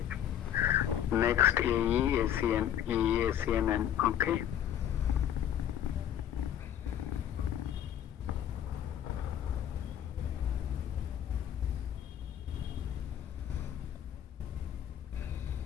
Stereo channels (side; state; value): right; quieter; 10.2 dB